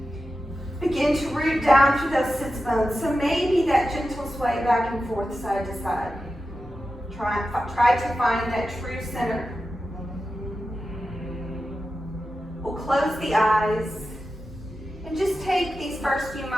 Begin to root down through those sits bones. So maybe that gentle sway back and forth, side to side. Try to find that true center. We'll close the eyes and just take these first few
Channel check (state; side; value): normal; both; correlation 0.92